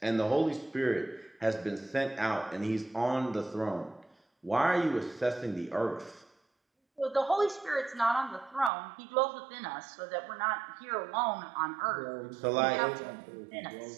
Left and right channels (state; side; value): drops out; left; at 8.7 s